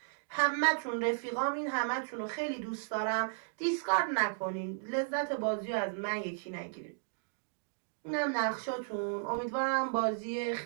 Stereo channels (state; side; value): silent; left; digital silence